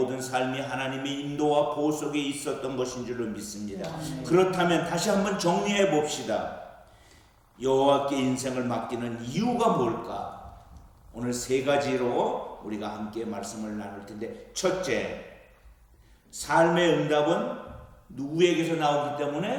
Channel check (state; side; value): identical; both; correlation 1.00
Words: 삶이 하나님의 인도와 보호 속에 있었던 것인 줄로 믿습니다. 아멘. 그렇다면 다시 한번 정리해 봅시다. 여호와께 인생을 맡기는 이유가 뭘까? 오늘 세 가지로 우리가 함께 말씀을 나눌 텐데, 첫째, 삶의 응답은 누구에게서 나오기